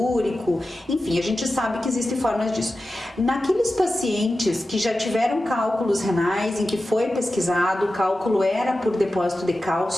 enfim, a gente sabe que existem formas disso. Naqueles pacientes que já tiveram cálculos renais, em que foi pesquisado, o cálculo era por depósito de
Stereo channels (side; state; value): both; normal; correlation 0.93